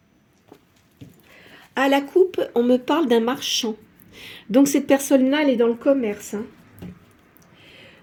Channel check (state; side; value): identical; both; correlation 1.00